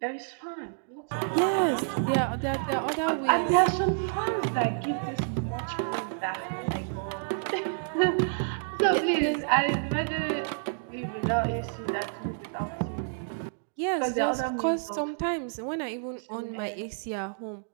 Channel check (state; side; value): silent; left; digital silence